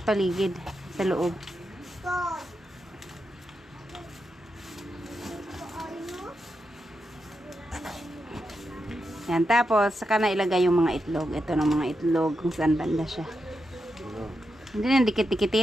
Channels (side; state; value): both; normal; correlation 0.86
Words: paligid, sa loob. Yan, tapos saka na ilagay yung mga itlog. Ito ng mga itlog kung saan banda siya. Hindi na